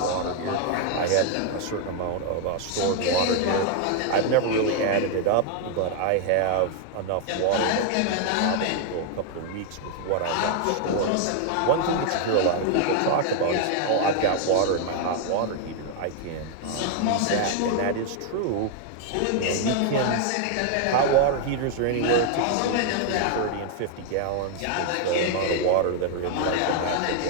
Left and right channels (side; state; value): both; different; correlation 0.00